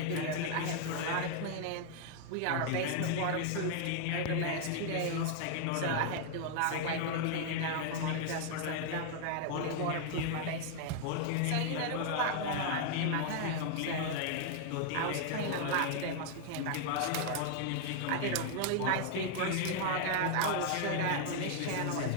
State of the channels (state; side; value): different; both; correlation 0.00